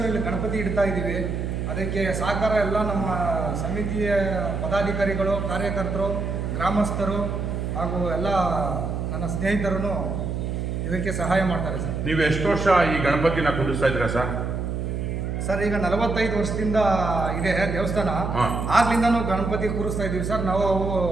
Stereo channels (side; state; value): right; noise; hum, 2 dB below the sound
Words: ಇಲ್ಲಿ ಗಣಪತಿ ಇಡ್ತಾ ಇದ್ದೀವಿ. ಅದಕ್ಕೆ ಸಹಕಾರ ಎಲ್ಲ ನಮ್ಮ ಸಮಿತಿಯ ಪದಾಧಿಕಾರಿಗಳು, ಕಾರ್ಯಕರ್ತರು, ಗ್ರಾಮಸ್ಥರು ಹಾಗೂ ಎಲ್ಲ ನನ್ನ ಸ್ನೇಹಿತರು ಇದಕ್ಕೆ ಸಹಾಯ ಮಾಡ್ತಾರೆ ಸರ್. ನೀವು ಎಷ್ಟು ವರ್ಷ ಈ ಗಣಪತಿನ ಕುಂಡಿಸ್ತಾ ಇದ್ದೀರಾ ಸರ್? ಸರ್ ಈಗ 45 ವರ್ಷದಿಂದ ಇದೆ ದೇವಸ್ಥಾನ. ಆಗ್ಲಿಂದನೂ ಗಣಪತಿ ಕೂರಿಸ್ತಾ ಇದ್ದೀವಿ ಸರ್. ನಾವು